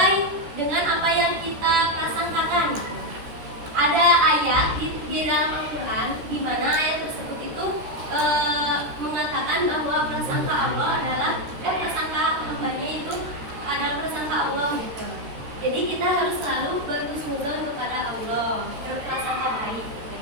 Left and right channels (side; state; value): left; late; 13 ms